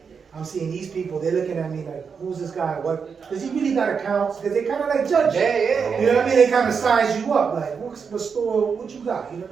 I'm seeing these people, they're looking at me like, who's this guy? What? Does he really got accounts? Because they kind of like judge you. Yeah. You know what I mean? They kind of size you up, like, what store, what you got? You know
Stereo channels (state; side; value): quieter; left; 6.0 dB